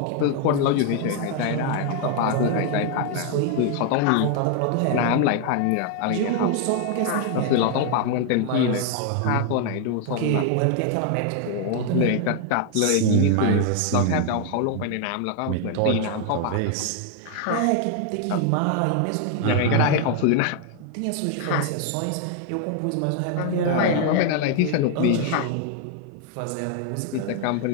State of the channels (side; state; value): both; different; correlation 0.00